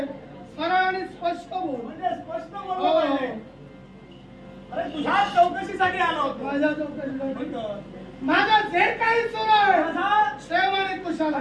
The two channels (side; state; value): both; identical; correlation 1.00